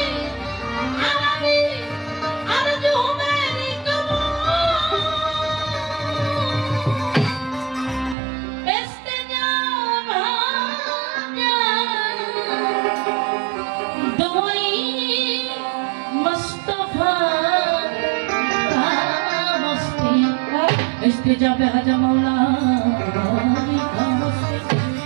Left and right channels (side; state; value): left; drops out; at 8.2 s